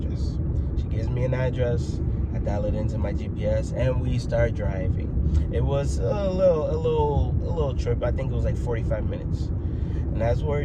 She gives me an address. I dial it into my GPS, and we start driving. It was a little trip. I think it was like 45 minutes. And as we're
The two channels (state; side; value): identical; both; correlation 1.00